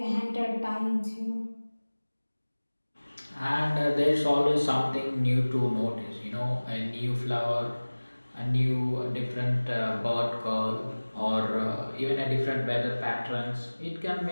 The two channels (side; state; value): both; inverted; correlation -1.00